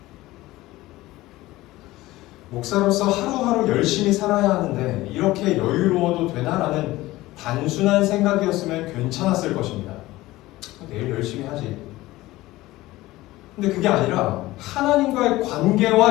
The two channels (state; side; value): quieter; right; 17.9 dB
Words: 목사로서 하루하루 열심히 살아야 하는데 이렇게 여유로워도 되나? 라는 단순한 생각이었으면 괜찮았을 것입니다. 내일 열심히 하지. 근데 그게 아니라 하나님과의